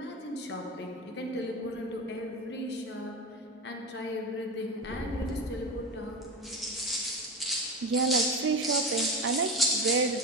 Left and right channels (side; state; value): both; normal; correlation 0.24